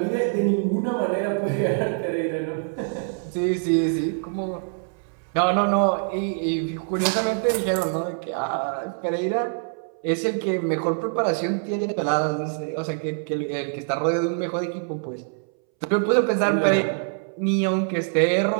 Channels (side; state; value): left; silent; 62 dB below the other